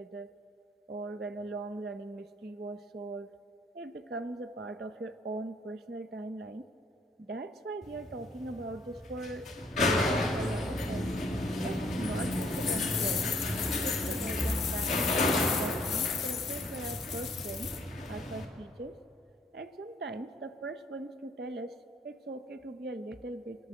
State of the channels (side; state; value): both; normal; correlation 0.63